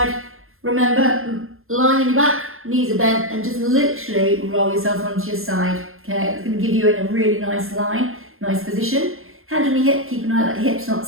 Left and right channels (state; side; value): late; left; 0.61 ms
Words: remember, lying on your back, knees are bent, and just literally roll yourself onto your side. Okay, it's going to give you in a really nice line, nice position. Hand on your hip, keep an eye that hip's not